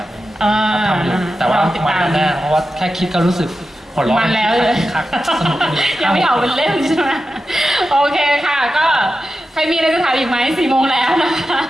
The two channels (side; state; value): both; normal; correlation 0.91